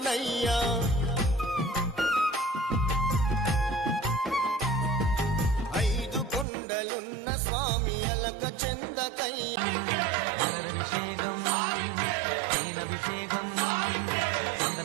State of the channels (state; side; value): drops out; left; at 6.5 s